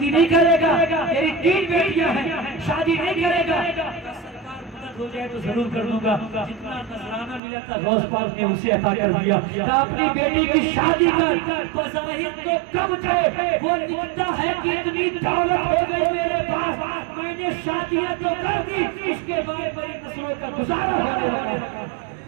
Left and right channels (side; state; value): left; drops out; at 7.4 s